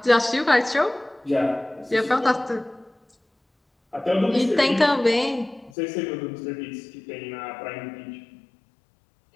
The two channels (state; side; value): drops out; right; at 5.7 s